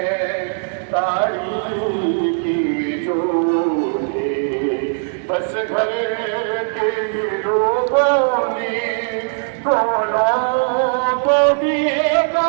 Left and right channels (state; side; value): silent; left; digital silence